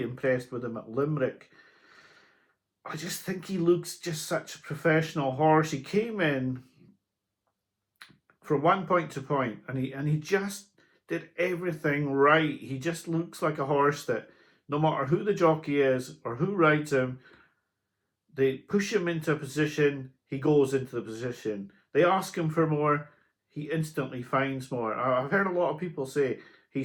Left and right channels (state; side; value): identical; both; correlation 1.00